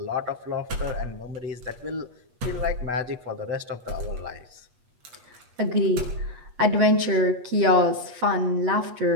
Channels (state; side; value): late; left; 8.3 ms